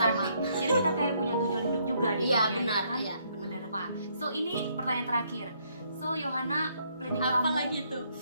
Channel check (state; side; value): inverted; both; correlation -0.70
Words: Jadi kita kayak punya tujuan hidup juga di Iya, dunia benar, ini kan? iya, benar. Benar Pak. So ini pertanyaan terakhir. So Yohana, planning Apa kamu lagi tuh?